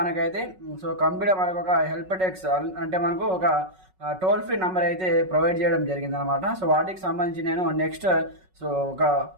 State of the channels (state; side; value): late; left; 5.4 ms